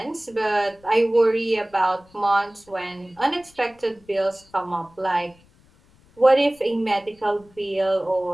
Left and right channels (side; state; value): left; noise; rumble, 30 dB below the sound